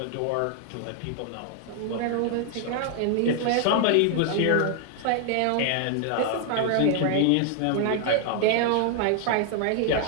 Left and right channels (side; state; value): both; different; correlation 0.00